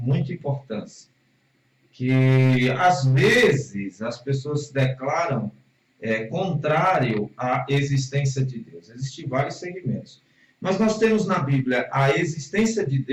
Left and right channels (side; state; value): both; identical; correlation 1.00